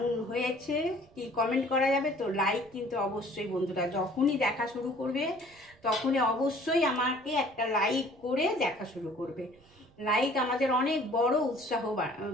হয়েছে, কি কমেন্ট করা যাবে তো? লাইক কিন্তু অবশ্যই বন্ধুরা, যখনই দেখা শুরু করবে তখনই অবশ্যই আমাকে একটা লাইক করে দেখা শুরু করবে। লাইক আমাদের অনেক বড় উৎসাহ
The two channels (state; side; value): noise; right; rumble, 29 dB below the sound